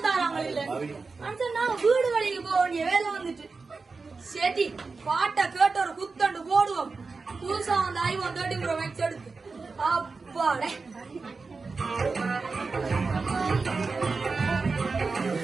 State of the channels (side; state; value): left; quieter; 4.3 dB